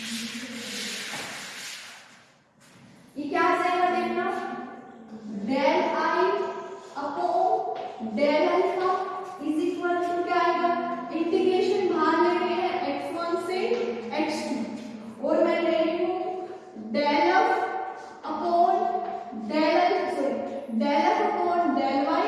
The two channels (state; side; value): identical; both; correlation 1.00